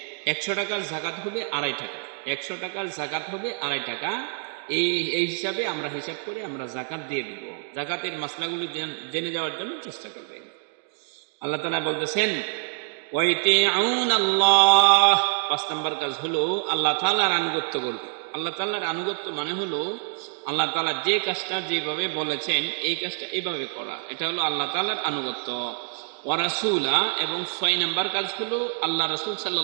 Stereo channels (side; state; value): left; silent; 61 dB below the other